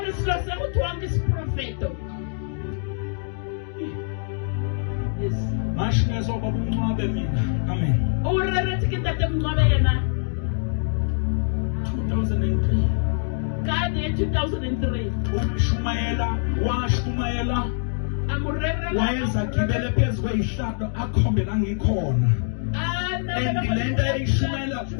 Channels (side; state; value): right; silent; digital silence